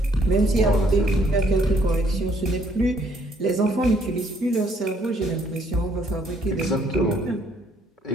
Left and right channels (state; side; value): normal; both; correlation 0.66